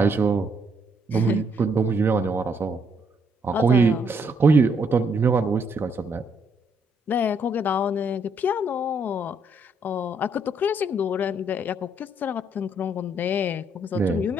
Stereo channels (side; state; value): both; normal; correlation 0.71